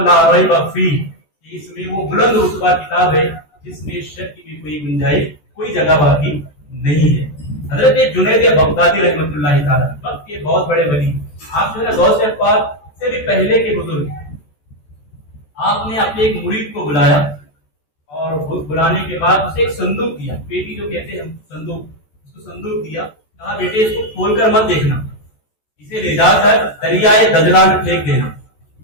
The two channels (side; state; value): right; late; 14 ms